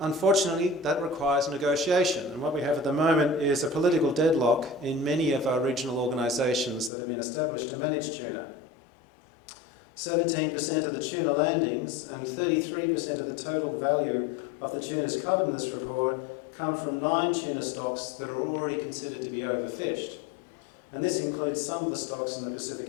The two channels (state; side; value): drops out; right; at 6.9 s